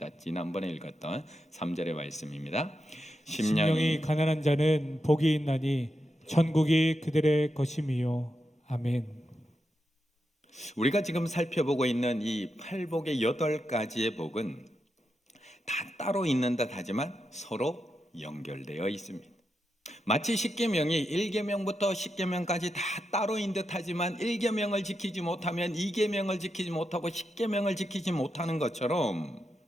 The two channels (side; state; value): both; normal; correlation 0.86